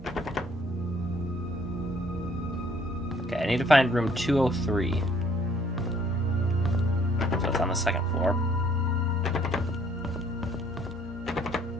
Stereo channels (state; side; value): normal; both; correlation 0.61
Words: Okay, I need to find room 203. So it's on the 2nd floor.